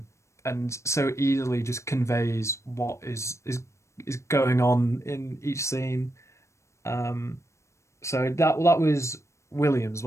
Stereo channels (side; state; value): right; late; 0.14 ms